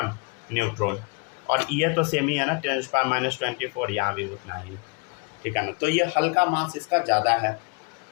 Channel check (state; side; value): quieter; right; 32.7 dB